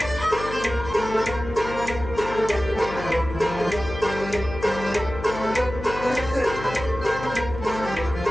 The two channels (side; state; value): left; noise; hum, 10 dB below the sound